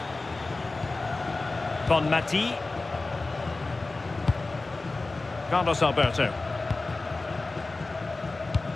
Bonmati. Carlos Alberto.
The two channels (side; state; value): right; quieter; 3.4 dB